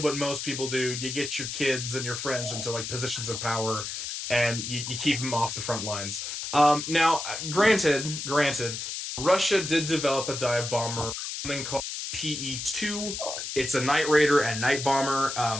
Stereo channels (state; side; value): noise; left; hiss, 5 dB below the sound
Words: what most people do: you get your kids and your friends into like positions of power, and you keep them off the front lines. Now, granted, Russia did develop a dive bomber, something called PE-2. It's a night raider and night